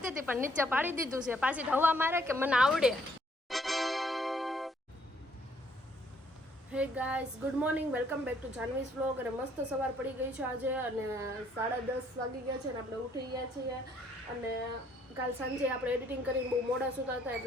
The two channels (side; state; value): both; normal; correlation 0.66